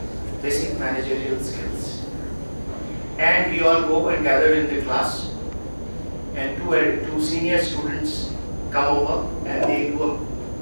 basic managerial skills. And we all go and gather in the class, and two senior students come over and they do a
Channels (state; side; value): inverted; both; correlation -1.00